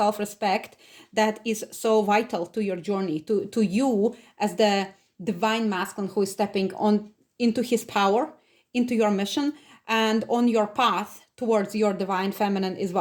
that is so vital to your journey, to you as the divine masculine who is stepping on into his power, into your mission, and on your path towards your divine feminine as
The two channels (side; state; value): both; identical; correlation 1.00